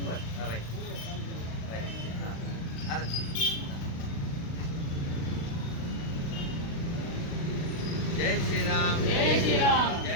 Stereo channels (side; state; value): right; late; 36 ms